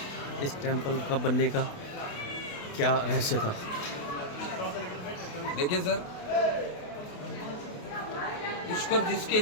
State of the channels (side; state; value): right; late; 28 ms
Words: इस टेंपल का बनने का क्या रहस्य था। देखिए सर, पुष्कर जिसके